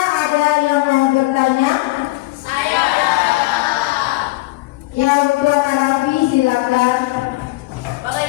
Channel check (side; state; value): right; quieter; 20.6 dB